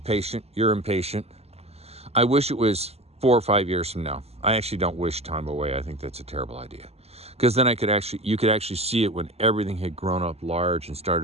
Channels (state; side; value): late; left; 0.30 ms